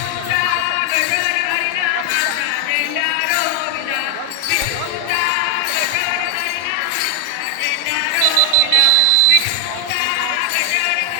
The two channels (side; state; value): both; different; correlation 0.00